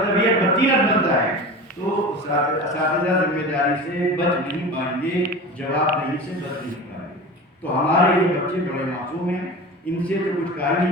طبیعت بدتینت بنتا ہے، تو اساتذہ ذمہ داری سے بچ نہیں پائیں گے، جواب دہی سے بچ نہیں پائیں گے. تو ہمارے یہ بچے بڑے معصوم ہیں، ان سے تو کچھ کہا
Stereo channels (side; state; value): both; normal; correlation 0.32